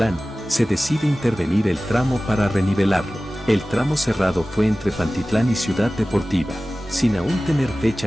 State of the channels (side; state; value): both; normal; correlation 0.97